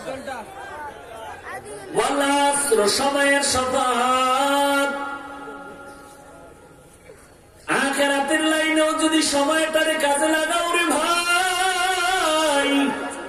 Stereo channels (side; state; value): both; identical; correlation 1.00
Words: সময়ের শপথ। আখিরাতের লাইনেও যদি সময়টারে কাজে লাগাও রে ভাই,